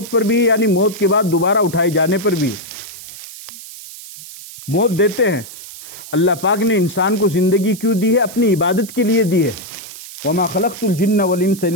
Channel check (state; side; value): noise; right; hiss, 14 dB below the sound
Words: پر بھی ہے، یعنی موت کے بعد دوبارہ اٹھائے جانے پر بھی ہے۔ موت دیتے ہیں، اللہ پاک نے انسان کو زندگی کیوں دی ہے؟ اپنی عبادت کے لیے دی ہے۔ وَمَا خَلَقْتُ الْجِنَّ وَالْإِنسَ